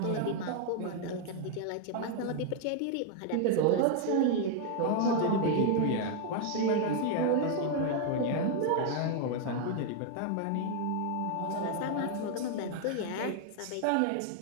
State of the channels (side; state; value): both; different; correlation 0.00